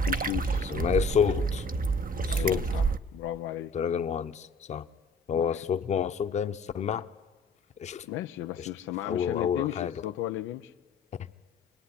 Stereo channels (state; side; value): quieter; right; 3.3 dB